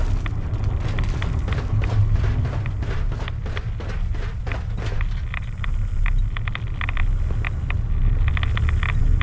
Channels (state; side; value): identical; both; correlation 1.00